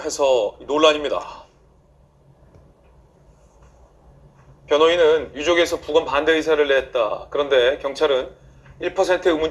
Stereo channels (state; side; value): identical; both; correlation 1.00